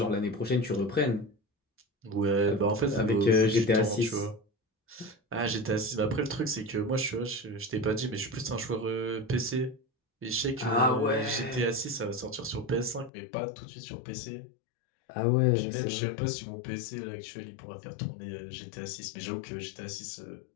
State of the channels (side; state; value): right; drops out; at 13.1 s